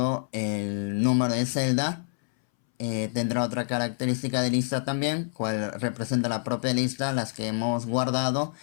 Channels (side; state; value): right; silent; 60 dB below the other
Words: el número de celda tendrá otra característica de lista también, cual representa la propia lista, las que hemos guardado.